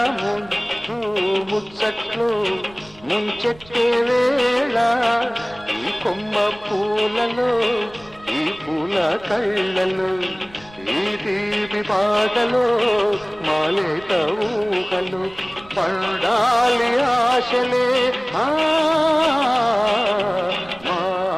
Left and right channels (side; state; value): right; noise; rumble, 24 dB below the sound